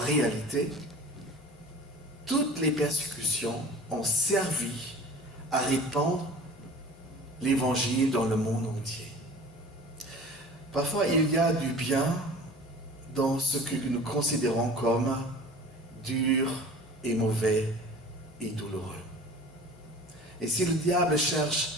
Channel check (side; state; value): both; normal; correlation 0.42